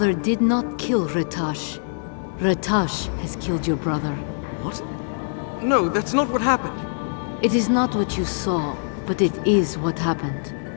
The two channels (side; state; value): right; silent; 63 dB below the other